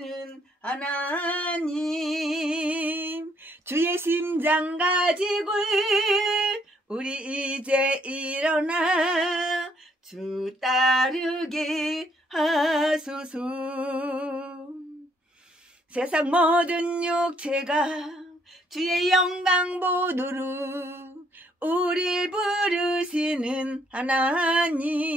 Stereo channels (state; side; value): normal; both; correlation 0.68